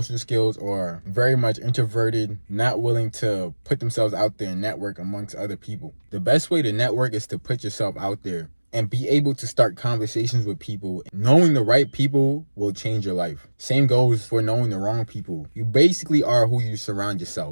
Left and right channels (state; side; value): inverted; both; correlation -1.00